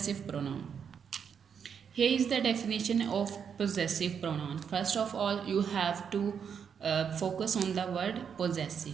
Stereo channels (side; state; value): left; quieter; 7.2 dB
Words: pronoun. Here is the definition of possessive pronoun. First of all, you have to focus on the word